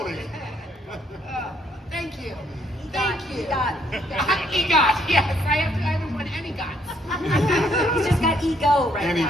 Thank you. Thank you. EGOT, yes. I haven't won any GOTs. He's just got ego right And he now.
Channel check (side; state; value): both; normal; correlation 0.69